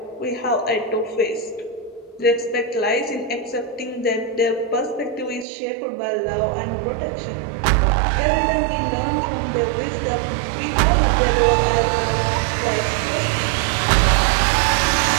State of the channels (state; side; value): drops out; left; at 5.5 s